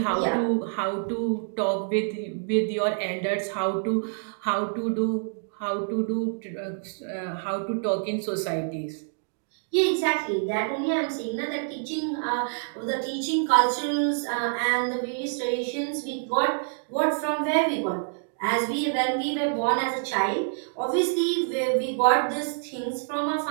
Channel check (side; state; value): left; silent; digital silence